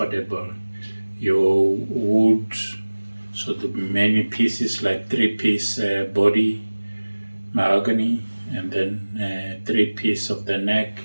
Your wood, so the many pieces like 3-piece body, mahogany, and then 3-piece of the neck.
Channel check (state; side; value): inverted; both; correlation -1.00